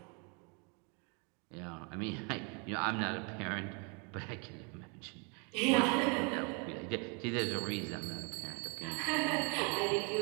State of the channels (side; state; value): left; quieter; 34.3 dB